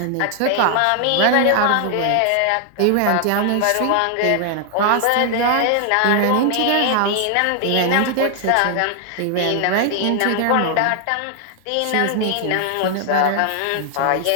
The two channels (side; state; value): both; different; correlation 0.00